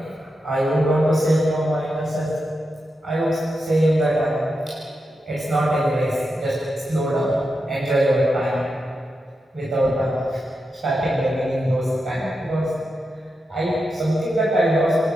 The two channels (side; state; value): both; normal; correlation 0.88